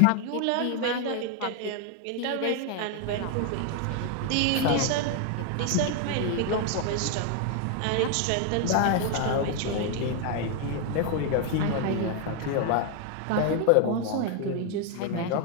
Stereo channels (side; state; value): both; different; correlation 0.00